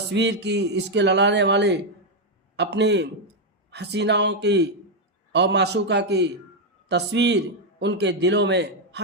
کی، عشق لڑانے والے اپنی حسیناؤں کی اور معشوقہ کی تصویر ان کے دلوں میں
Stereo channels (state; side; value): normal; both; correlation 0.02